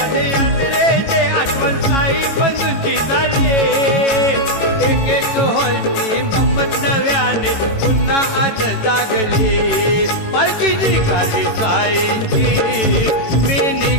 आठवण साई बंधूंची झाली एक एक हॉलची गंमत नव्याने पुन्हा आज जागली पालखी निघाली साईंची मी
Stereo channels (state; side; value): late; right; 18 ms